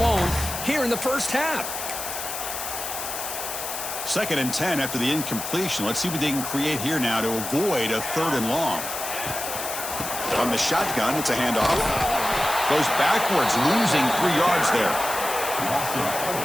here in the first half. 2nd and 10 after the incompletion. Let's see what they can create here now to avoid a 3rd and long. On the shotgun, it's a handoff. Goes backwards, losing 3 yards there.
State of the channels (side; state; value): left; noise; hiss, 6 dB below the sound